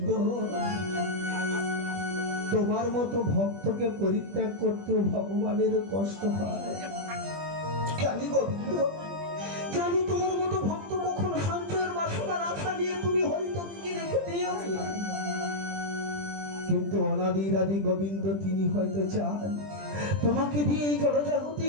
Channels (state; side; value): late; left; 20 ms